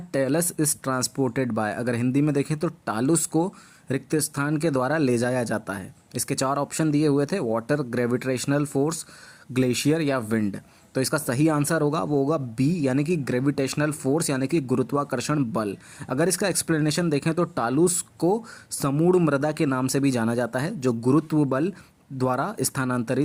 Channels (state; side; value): identical; both; correlation 1.00